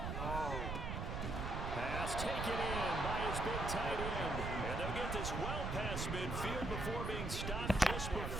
Pass taken in by his big tight end. And they'll get this well past midfield before being stopped just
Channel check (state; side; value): noise; right; rumble, 3 dB below the sound